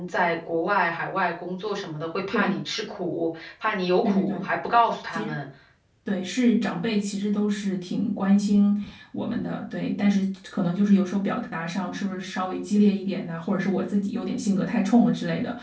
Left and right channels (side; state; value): both; identical; correlation 1.00